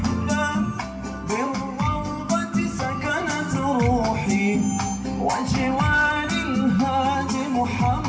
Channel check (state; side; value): identical; both; correlation 1.00